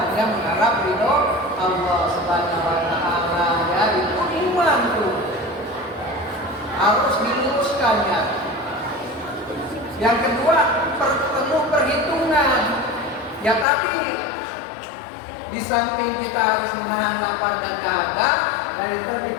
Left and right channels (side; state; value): right; drops out; at 13.7 s